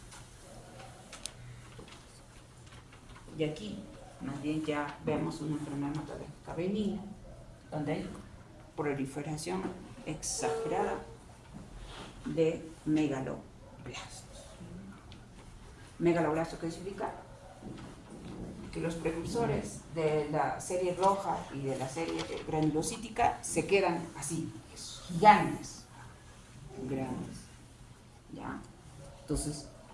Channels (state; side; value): identical; both; correlation 1.00